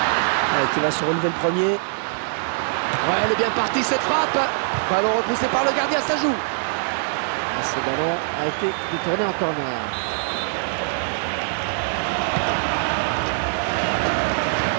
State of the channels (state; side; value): silent; left; digital silence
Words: Qui va se relever le premier. Ouais, elle est bien partie cette frappe. Ballon repoussé par le gardien, ça joue. Ce ballon a été détourné en corner.